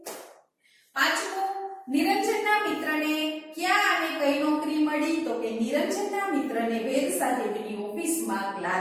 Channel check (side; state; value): both; identical; correlation 1.00